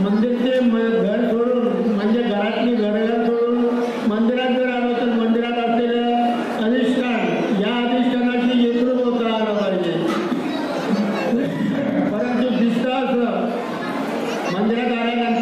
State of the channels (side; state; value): both; identical; correlation 1.00